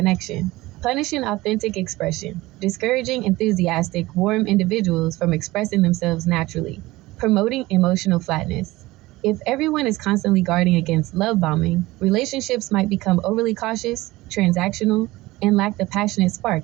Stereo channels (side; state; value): left; quieter; 19.2 dB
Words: punishing authentic expression, discouraging enthusiastic, warm individuals from expressing themselves naturally, promoting emotional flatness. If everyone is constantly guarding against love bombing, relationships might become overly cautious, transactional, and lack the passionate